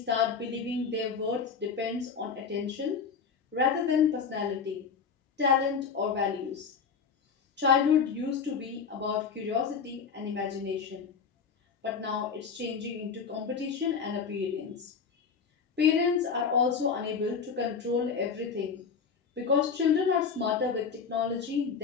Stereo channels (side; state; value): right; quieter; 5.9 dB